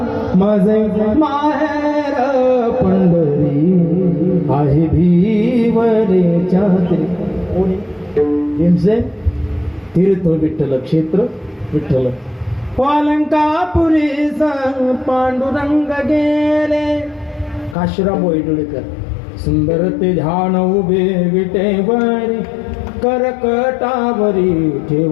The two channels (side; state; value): right; drops out; at 17.8 s